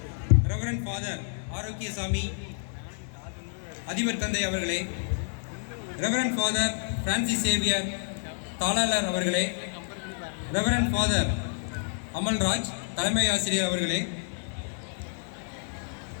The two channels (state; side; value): silent; right; 59 dB below the other